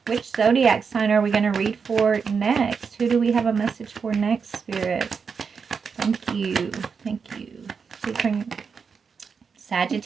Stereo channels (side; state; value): left; quieter; 5.8 dB